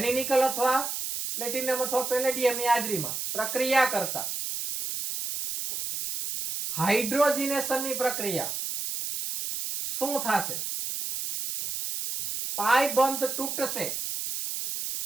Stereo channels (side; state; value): right; noise; hiss, 4 dB below the sound